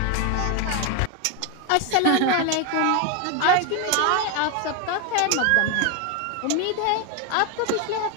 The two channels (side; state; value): both; different; correlation 0.01